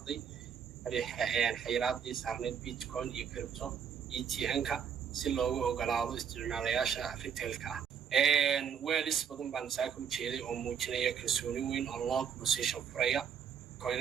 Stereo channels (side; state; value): left; quieter; 7.6 dB